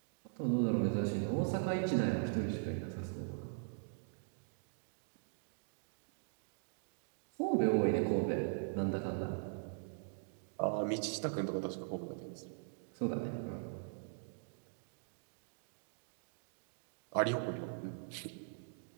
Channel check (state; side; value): silent; left; digital silence